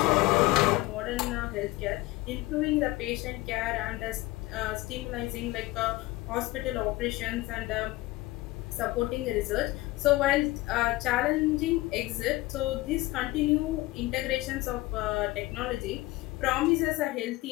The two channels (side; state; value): right; quieter; 19.3 dB